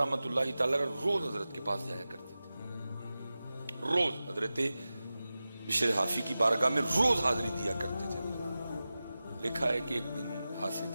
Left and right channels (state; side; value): inverted; both; correlation -0.95